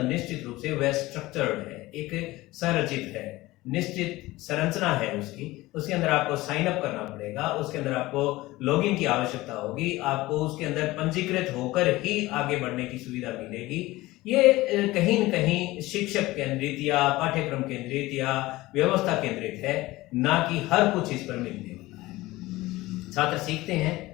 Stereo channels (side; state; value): right; quieter; 18.9 dB